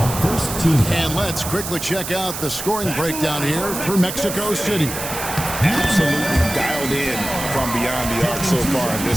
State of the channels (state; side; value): noise; right; hiss, 7 dB below the sound